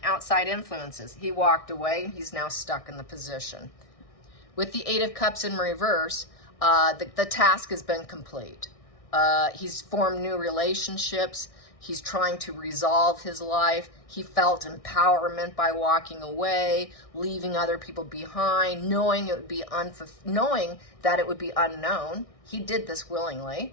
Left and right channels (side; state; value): right; late; 1.6 ms